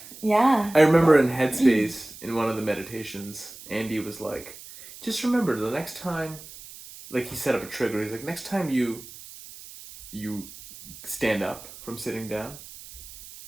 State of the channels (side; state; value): right; noise; hiss, 16 dB below the sound